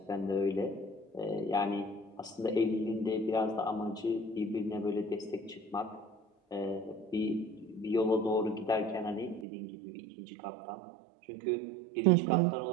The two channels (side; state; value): left; drops out; at 9.5 s